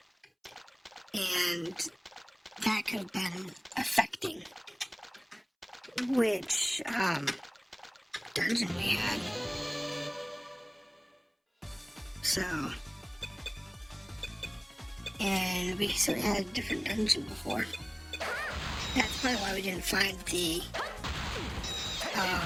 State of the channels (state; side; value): identical; both; correlation 1.00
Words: And that could have been affecting which dungeon we had. So, and we had a different dungeon before. That's probably why we didn't find the